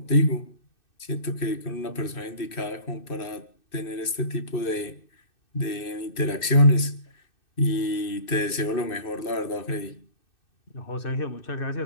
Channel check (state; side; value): late; right; 2.6 ms